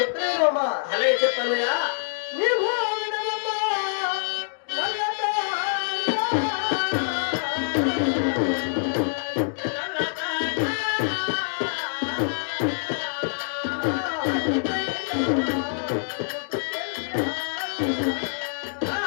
అలాగే చెప్పన్నయ్యా. నీవు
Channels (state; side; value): silent; right; digital silence